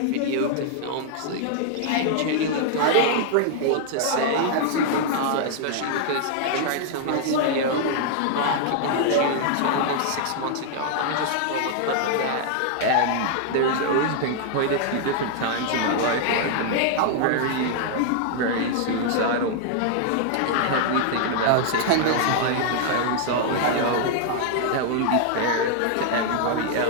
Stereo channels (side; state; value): both; different; correlation -0.01